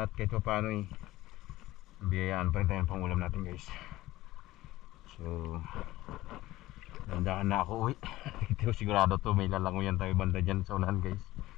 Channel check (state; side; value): quieter; right; 17.0 dB